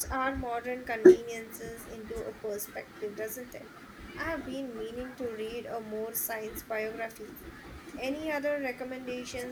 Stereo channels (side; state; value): both; identical; correlation 1.00